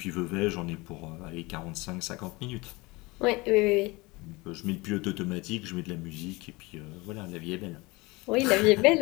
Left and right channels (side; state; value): right; quieter; 23.7 dB